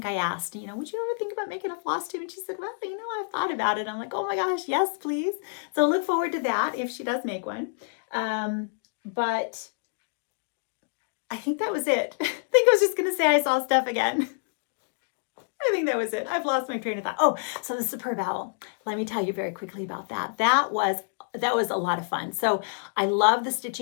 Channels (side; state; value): right; silent; digital silence